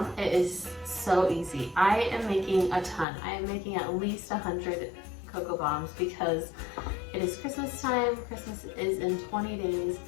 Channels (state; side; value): drops out; right; at 3.1 s